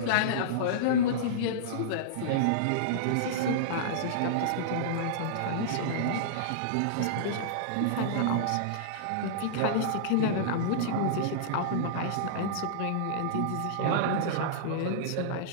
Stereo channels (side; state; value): both; different; correlation -0.03